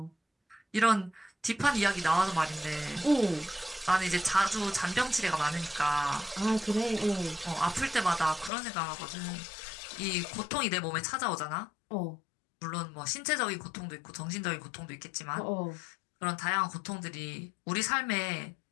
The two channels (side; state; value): right; drops out; at 8.5 s